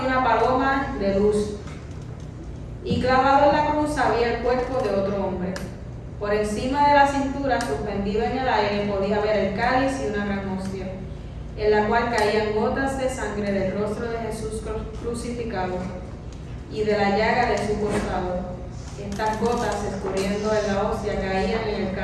una paloma de luz, y clavado en la cruz había el cuerpo de otro hombre. Por encima de la cintura, suspendido en el aire, podía ver el cáliz y una gran hostia, en la cual caían gotas de sangre del rostro de Jesús crucificado y de la llaga de su costado. Estas gotas, escurriendo en la hostia, caían en el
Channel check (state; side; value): identical; both; correlation 1.00